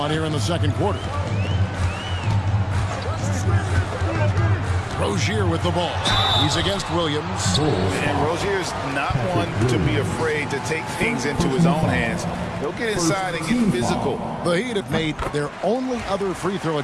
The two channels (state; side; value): identical; both; correlation 1.00